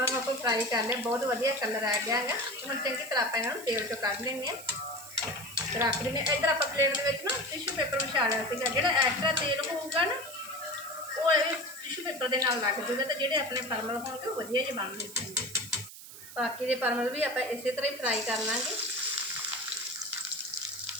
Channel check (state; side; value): noise; right; hiss, 14 dB below the sound